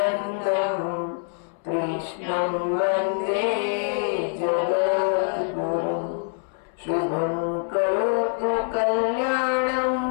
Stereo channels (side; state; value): right; silent; 62 dB below the other